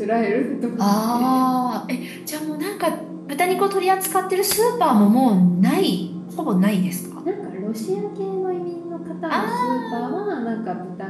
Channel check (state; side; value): identical; both; correlation 1.00